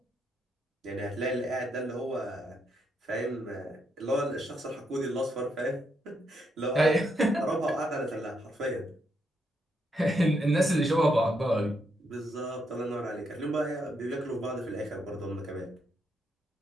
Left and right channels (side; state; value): both; normal; correlation 0.78